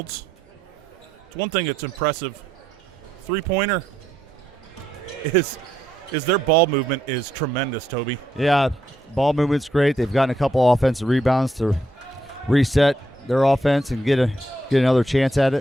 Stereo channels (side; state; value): both; normal; correlation 0.77